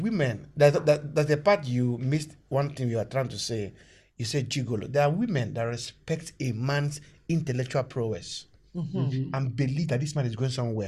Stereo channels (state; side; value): identical; both; correlation 1.00